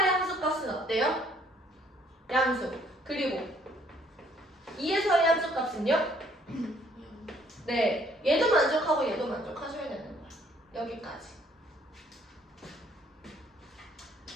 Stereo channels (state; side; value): normal; both; correlation 0.63